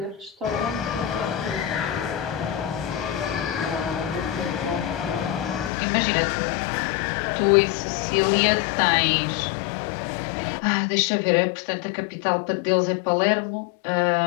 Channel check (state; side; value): drops out; right; at 5.7 s